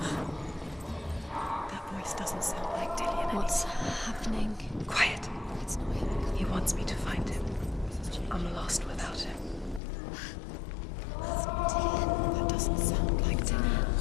Doesn't sound like Dillian. What's happening? Quiet. It's not him. He wants me to find him. I'm lost without him. It's not Dillian. That doesn't sound like Dillian.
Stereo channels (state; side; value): drops out; right; at 9.8 s